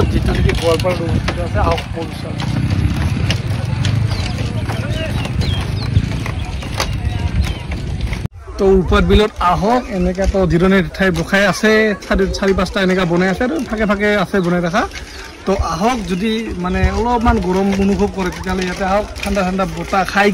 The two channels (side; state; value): both; identical; correlation 1.00